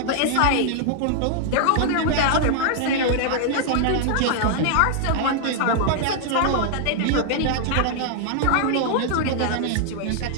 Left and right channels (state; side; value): different; both; correlation 0.00